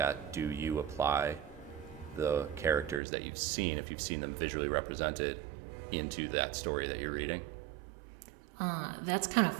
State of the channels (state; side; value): drops out; left; at 3.0 s